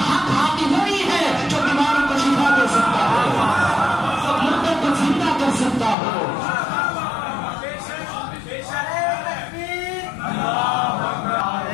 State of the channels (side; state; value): right; drops out; at 6.0 s